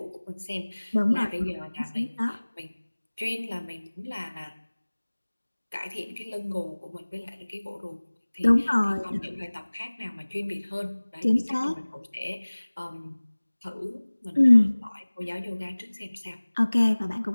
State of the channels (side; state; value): both; inverted; correlation -1.00